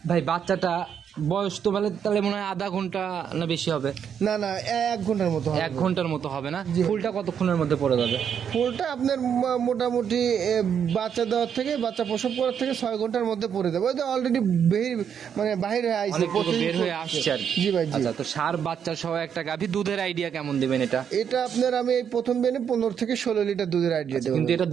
ভাই বাচ্চাটা বয়স তো বলে তাহলে মনে হয় আধা ঘন্টা না বেশি হবে? না না, 1 ঘন্টার মতো হবে। 1 ঘন্টার মতো হবে না? জি। ফুলটা কতক্ষণের মধ্যে পড়ে যাবে? ফুলটা আপনার মোটামুটি বাচ্চা দেওয়ার থেকে, বাচ্চা প্রসব করার থেকে 6 ঘন্টার মধ্যে পড়ে যাবে। ওই তো অলরেডি মানে বাহির হয়ে আইছে, অনেকটুকু বের হয়ে আসছে আর কি। জি ভাই, জি। আচ্ছা, তো সার বাচ্চা সহ একটা গাভী, দুধের আইডিয়া কেমন দিবেন এটা? এটা আপনার আমি এই প্রথম বেনে 15 থেকে 16 লিটার দুধের আইডিয়া দেবো। কিন্তু এটা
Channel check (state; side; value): quieter; left; 8.0 dB